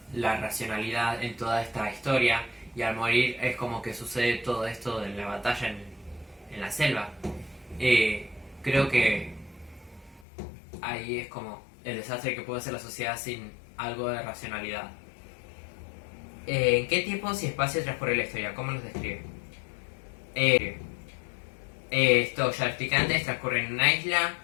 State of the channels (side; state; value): right; drops out; at 10.2 s